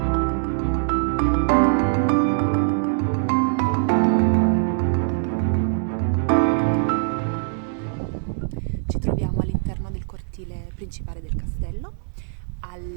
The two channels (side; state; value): left; silent; digital silence